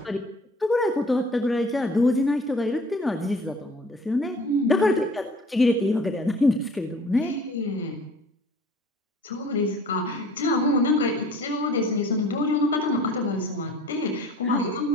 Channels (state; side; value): normal; both; correlation 0.48